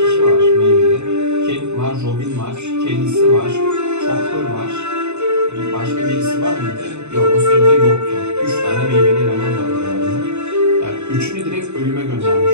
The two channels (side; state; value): left; late; 0.82 ms